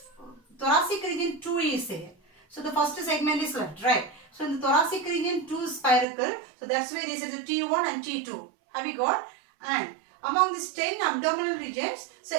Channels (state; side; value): drops out; left; at 6.1 s